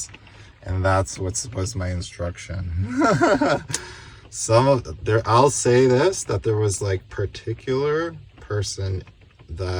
and that's what was my instruction. I'll say this, that there was like particular person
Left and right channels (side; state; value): both; identical; correlation 1.00